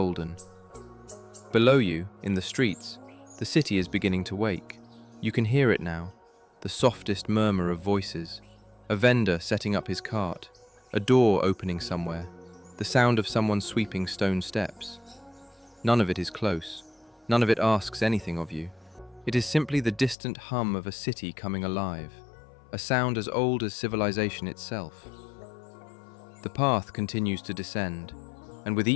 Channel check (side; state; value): right; drops out; at 20.2 s